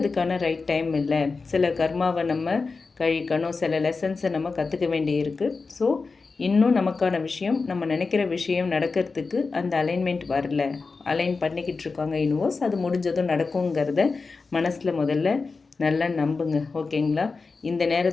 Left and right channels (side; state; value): right; quieter; 4.3 dB